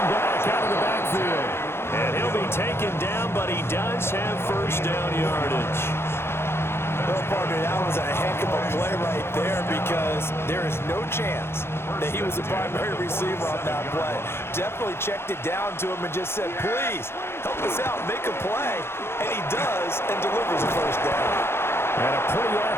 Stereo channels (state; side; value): late; right; 0.12 ms